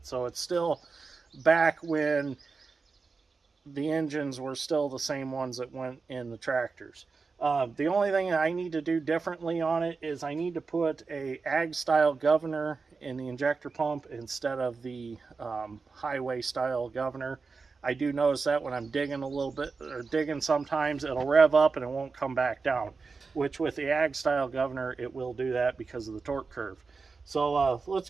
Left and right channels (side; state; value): left; quieter; 4.5 dB